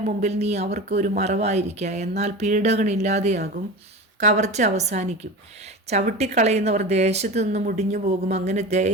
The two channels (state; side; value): normal; both; correlation 0.29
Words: മുമ്പിൽ നീ അവർക്ക് ഒരു മറവായിരിക്കുക. എന്നാൽ പീഡകനില്ലാതെയാകും, കവർച്ച അവസാനിക്കും. ചവിട്ടിക്കളയുന്നവർ ദേശത്തു നിന്ന് മുടിഞ്ഞു പോകും. അങ്ങനെ